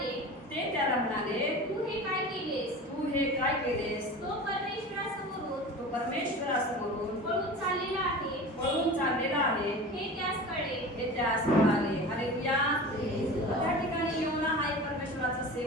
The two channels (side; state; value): both; normal; correlation 0.34